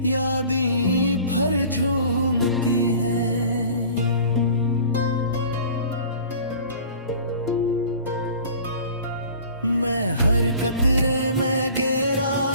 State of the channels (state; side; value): inverted; both; correlation -0.45